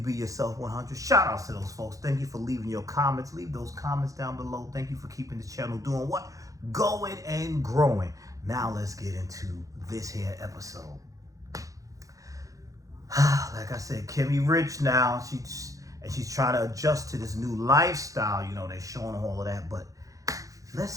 Yourself 100. Shout outs to those folks. Thank you for leaving your comments. Leave those comments down below. Thank you for keeping the channel doing what? Going and growing. Now let's get into this here episode. Like I said, Kimmy rich now. She's trying to adjust to this new lifestyle. You know, they're showing all of that, but let's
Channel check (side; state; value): left; late; 0.16 ms